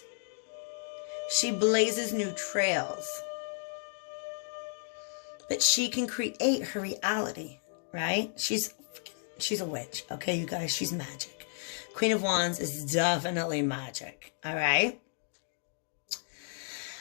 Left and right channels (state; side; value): silent; right; digital silence